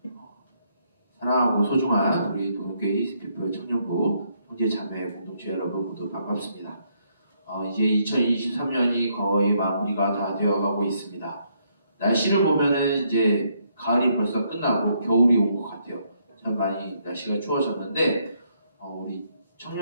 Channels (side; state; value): both; inverted; correlation -0.73